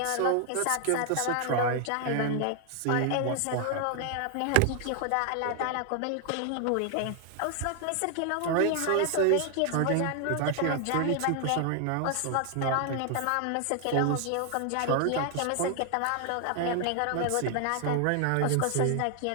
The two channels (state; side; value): different; both; correlation 0.00